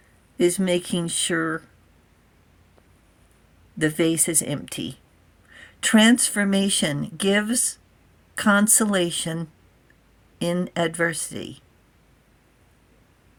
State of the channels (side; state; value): both; identical; correlation 1.00